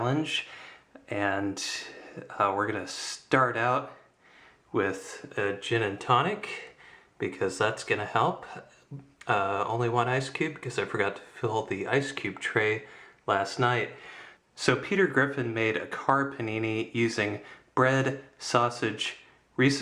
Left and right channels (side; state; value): both; identical; correlation 1.00